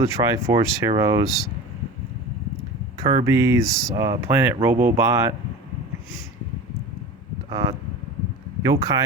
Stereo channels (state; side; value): normal; both; correlation 0.33